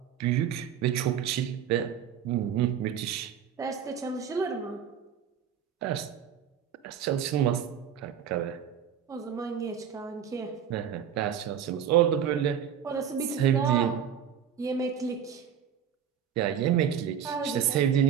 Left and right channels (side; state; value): left; quieter; 8.7 dB